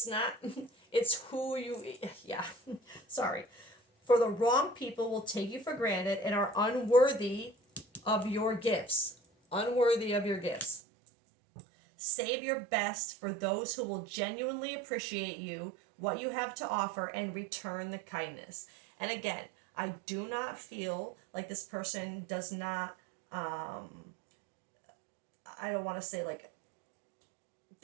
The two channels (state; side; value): drops out; left; at 10.8 s